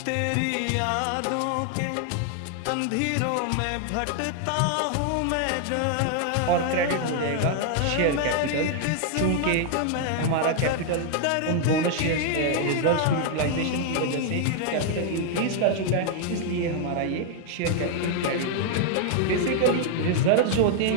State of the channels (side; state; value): both; different; correlation 0.00